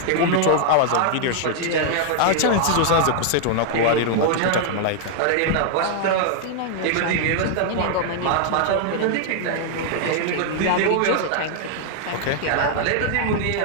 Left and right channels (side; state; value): both; different; correlation -0.01